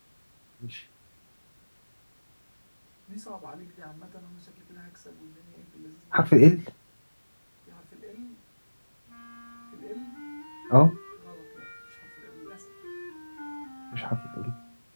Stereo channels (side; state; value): both; inverted; correlation -1.00